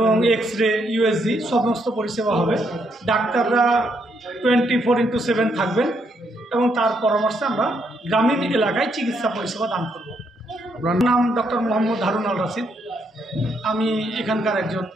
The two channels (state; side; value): normal; both; correlation 0.75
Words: এক্স-রে, ইউএসজি সমস্ত পরিষেবা হবে। ডাক্তাররা 24x7 থাকবেন, এবং তার পরামর্শে আমরা গ্রামীণ এলাকায় চিকিৎসা পরিষেবা দান করব। আপনার নাম ডক্টর মোহাম্মদ হারুন আল রাশিদ। আমি এখানকার একজন